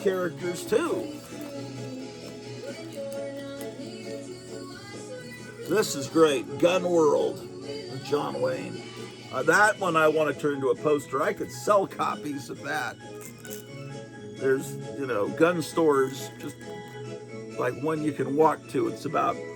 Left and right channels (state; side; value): identical; both; correlation 1.00